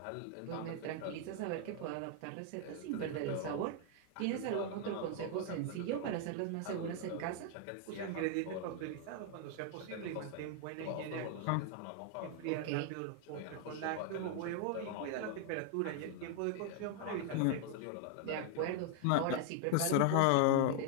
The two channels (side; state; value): both; different; correlation 0.00